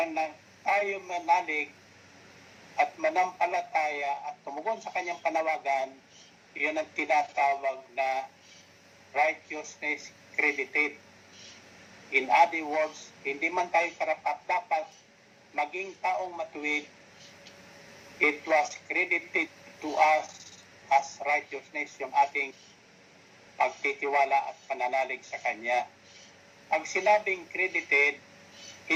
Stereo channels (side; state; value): both; identical; correlation 1.00